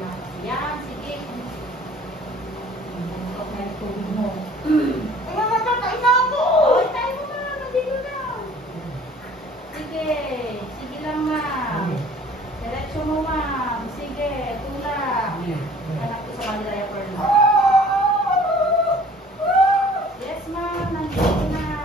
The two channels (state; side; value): normal; both; correlation 0.51